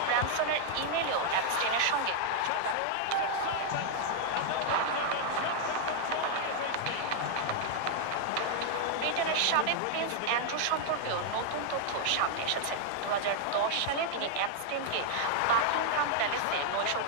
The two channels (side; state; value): both; different; correlation -0.01